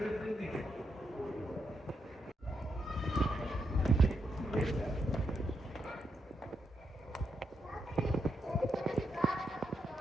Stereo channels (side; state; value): both; normal; correlation 0.82